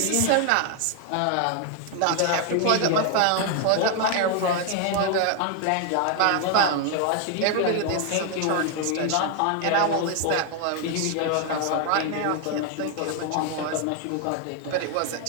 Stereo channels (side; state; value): both; different; correlation 0.00